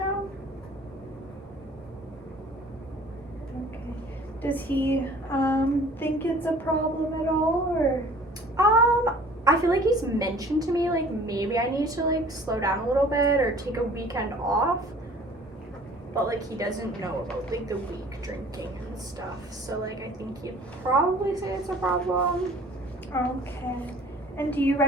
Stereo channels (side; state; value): both; normal; correlation 0.50